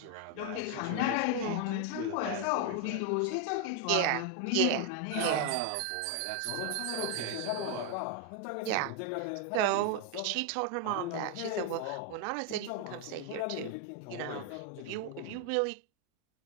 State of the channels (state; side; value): different; both; correlation 0.00